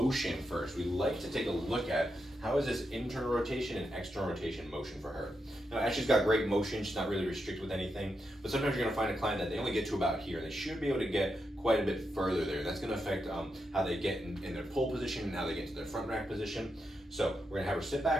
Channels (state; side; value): normal; both; correlation 0.85